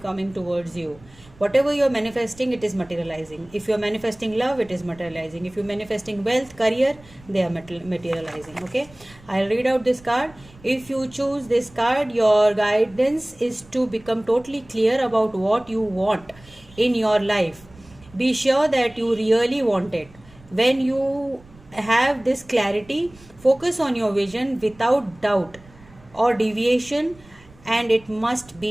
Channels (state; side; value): noise; right; rumble, 24 dB below the sound